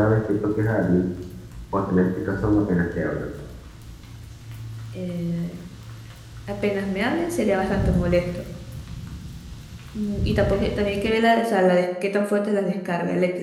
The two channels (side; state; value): both; identical; correlation 1.00